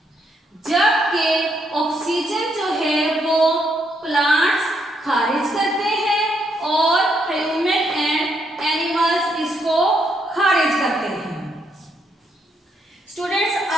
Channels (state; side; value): normal; both; correlation 0.76